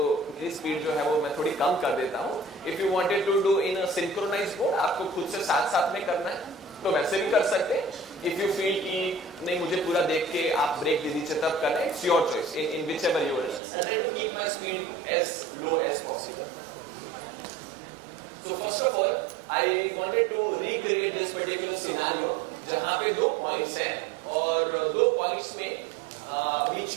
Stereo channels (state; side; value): drops out; left; at 13.6 s